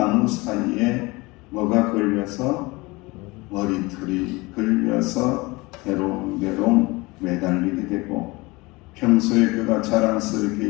사이에 뭐가 걸려서 머리털이 걸려서 대롱대롱 매달리게 되고 평소에 그가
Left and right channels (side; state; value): right; quieter; 23.5 dB